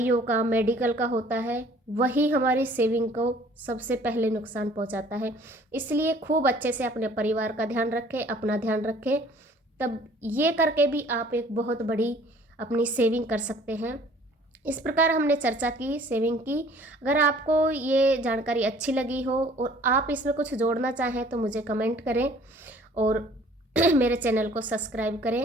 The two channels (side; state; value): both; normal; correlation 0.54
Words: का, मेडिकल का होता है, वही हमारी सेविंग को सबसे पहले नुकसान पहुंचाता है। इसलिए खूब अच्छे से अपने परिवार का ध्यान रखें, अपना ध्यान रखें, तब ये करके भी आप एक बहुत बड़ी अपनी सेविंग कर सकते हैं। इस प्रकार हमने चर्चा की, सेविंग की। अगर आपको ये जानकारी अच्छी लगी हो और आप इसमें कुछ जोड़ना चाहें तो मुझे कमेंट करें और मेरे चैनल को सब्सक्राइब